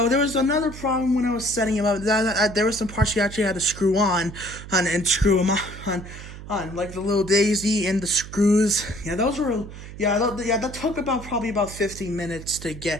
there was another problem when I was setting him up. There were some parts you actually had to screw on and screw them on like the little daisy and the screws. Yeah, those were that took probably about 15 minutes to get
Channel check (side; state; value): right; noise; hum, 13 dB below the sound